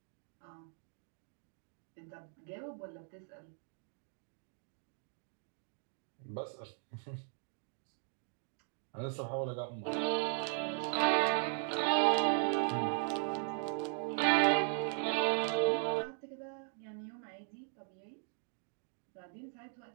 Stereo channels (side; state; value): left; silent; 52 dB below the other